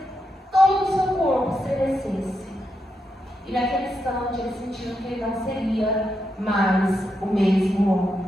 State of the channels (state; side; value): normal; both; correlation 0.84